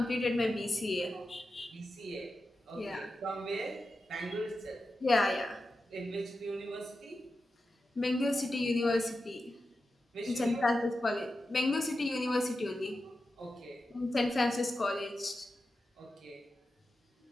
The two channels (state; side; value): normal; both; correlation 0.91